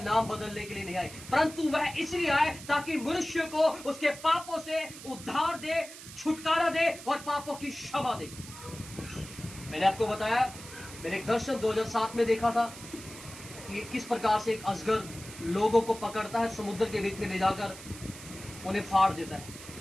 बदलने के लिए नहीं आए, परंतु वह इसलिए आए ताकि मनुष्य को उसके पापों से उद्धार दे, छुटकारा दे और पापों की क्षमा दे। मैंने आपको बताया, मैंने एक दर्शन 2007 में देखा था कि किस प्रकार से एक अजगर लोगों को पकड़ता है, समुद्र के बीच में ले जाकर उन्हें फाड़ देता है।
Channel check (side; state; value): right; noise; hiss, 15 dB below the sound